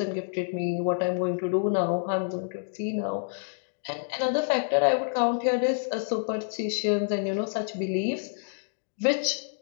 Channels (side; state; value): right; silent; digital silence